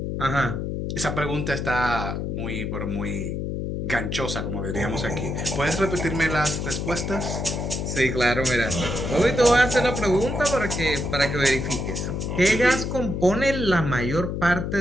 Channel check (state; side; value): noise; left; hum, 3 dB below the sound